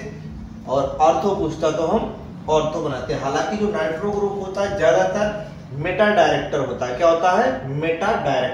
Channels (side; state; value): both; identical; correlation 1.00